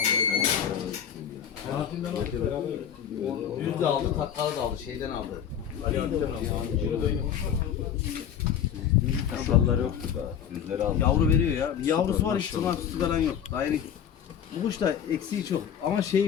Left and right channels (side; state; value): right; quieter; 8.8 dB